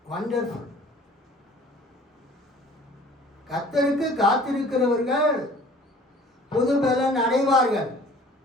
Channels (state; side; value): normal; both; correlation 0.50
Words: வண்டர்ஃபுல். கர்த்தருக்கு காத்திருக்கிறவர்கள் புது பலன் அடைவார்கள்.